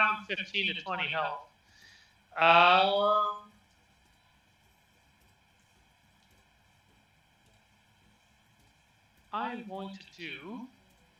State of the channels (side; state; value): both; identical; correlation 1.00